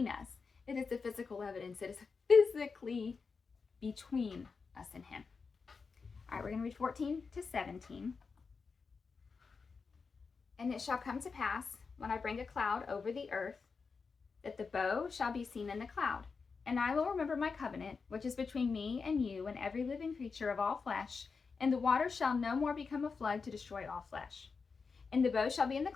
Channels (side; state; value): right; quieter; 5.0 dB